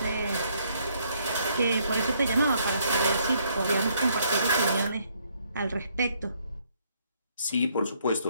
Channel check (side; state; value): both; inverted; correlation -0.70